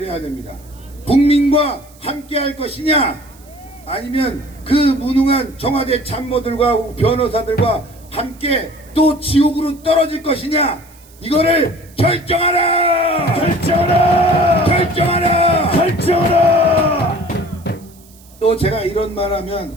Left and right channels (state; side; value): noise; right; hiss, 26 dB below the sound